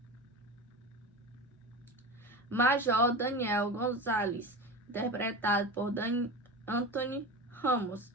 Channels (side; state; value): both; normal; correlation 0.27